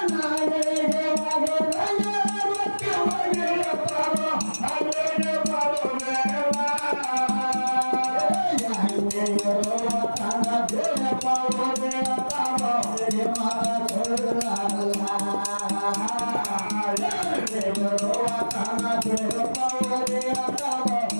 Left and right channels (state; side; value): inverted; both; correlation -1.00